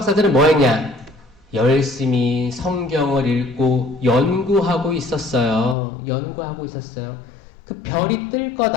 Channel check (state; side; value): drops out; right; at 5.8 s